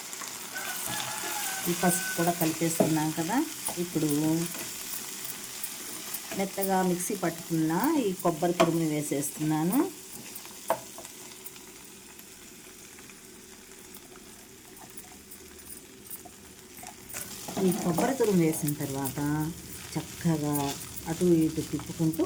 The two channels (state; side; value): identical; both; correlation 1.00